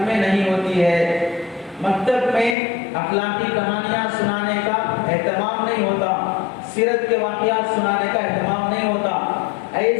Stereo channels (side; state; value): right; drops out; at 2.6 s